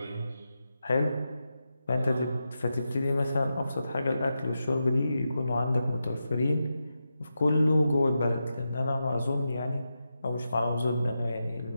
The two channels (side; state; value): both; inverted; correlation -0.89